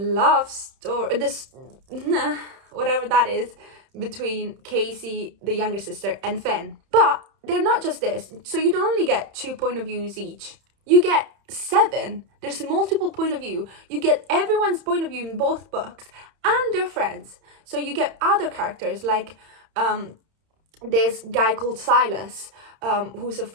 story, whatever that is, between Casey, the younger sister, and Fenn. But they're not just this. So you don't only get 2 point of views each. You get 7. There's multiple point of view. You get everyone's point of view in both books and their friends. So you get other characters like this guy called Silas, who's a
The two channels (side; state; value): left; late; 31 ms